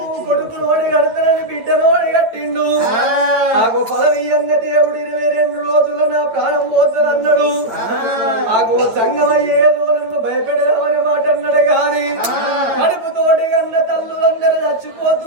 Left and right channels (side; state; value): left; late; 8.9 ms